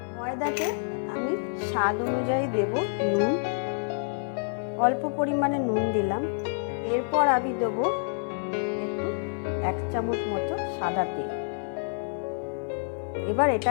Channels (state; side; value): silent; right; digital silence